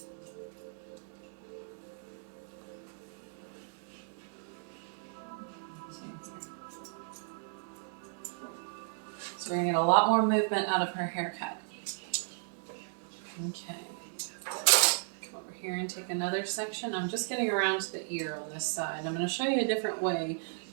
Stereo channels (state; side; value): silent; left; digital silence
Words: So we're going to get a lot more movement out of her haircut. Okay. Come over here and take another section. I'm just getting around to the ear on this side. I'm going to show you a different way